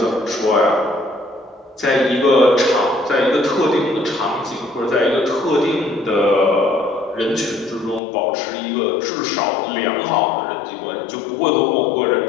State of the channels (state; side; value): drops out; right; at 8.0 s